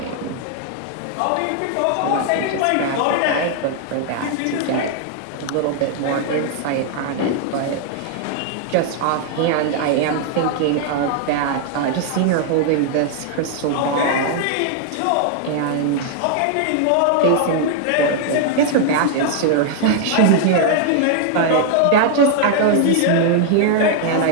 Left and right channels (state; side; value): different; both; correlation 0.00